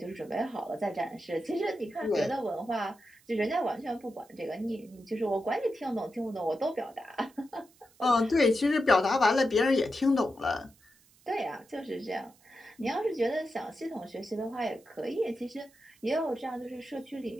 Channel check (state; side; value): noise; right; hiss, 30 dB below the sound